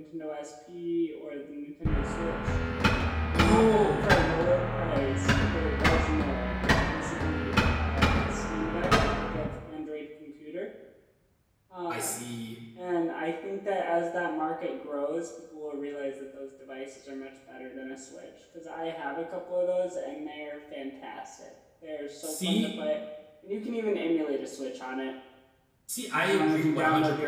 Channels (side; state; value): both; identical; correlation 1.00